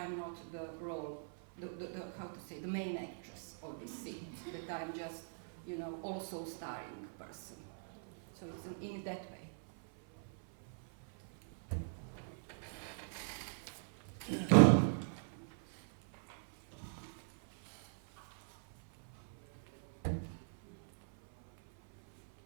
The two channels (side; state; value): left; silent; 50 dB below the other